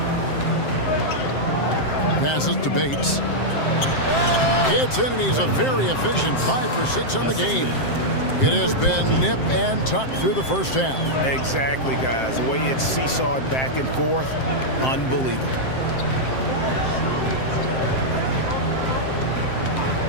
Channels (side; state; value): right; late; 7.6 ms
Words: Passes to Bates. Gets in, and he's a very efficient 5 for 6 on the game. It has been nip and tuck through the first half. Exactly, guys. The way it's seesawed back and forth, unbelievable.